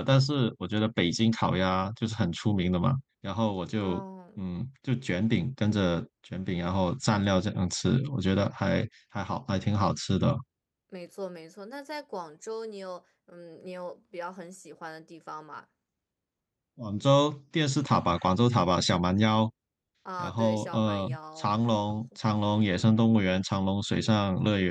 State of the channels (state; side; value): identical; both; correlation 1.00